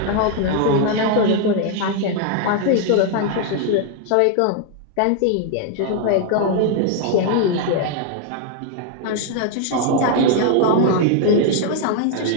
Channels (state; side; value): different; both; correlation 0.00